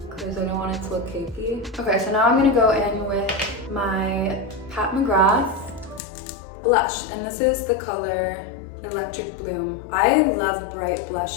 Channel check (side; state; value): right; drops out; at 6.0 s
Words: because I don't want it to look cakey. Okay, so now I'm gonna go in with my Pat McGrath blush, and this is the color Electric Bloom. I love bright